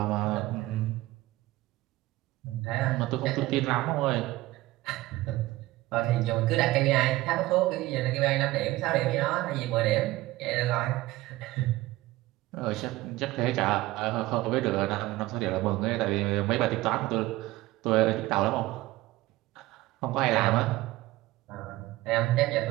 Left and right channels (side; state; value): left; quieter; 18.1 dB